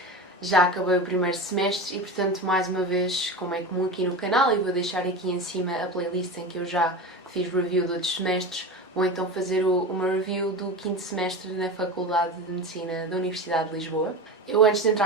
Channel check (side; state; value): both; normal; correlation 0.26